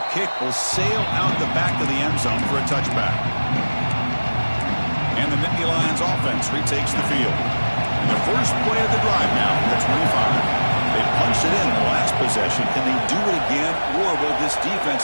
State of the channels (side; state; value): both; inverted; correlation -1.00